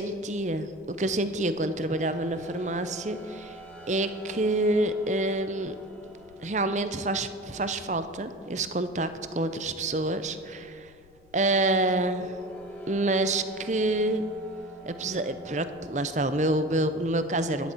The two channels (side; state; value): left; noise; rumble, 28 dB below the sound